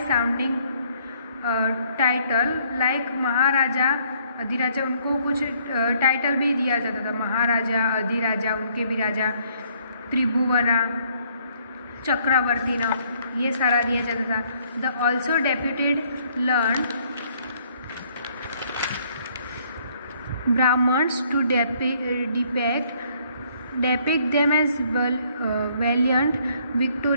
title like maharaja adhiraja. उनको कुछ टाइटल भी दिया जाता था, महाराजा अधिराजा, उनके भी राजा, त्रिभुवना, चक्रवर्ती नाम, ये सारा दिया जाता था. The also deputed learn Brahmins to depict them as valiant,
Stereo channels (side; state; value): both; inverted; correlation -0.65